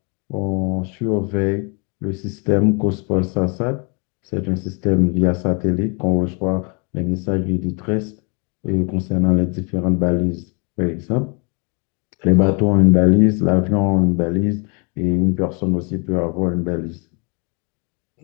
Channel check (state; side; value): quieter; right; 34.7 dB